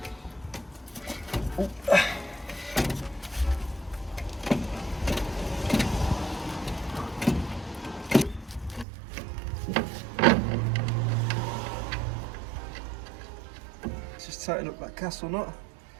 Oh. Just tighten up that castle nut.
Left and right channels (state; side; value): drops out; left; at 8.8 s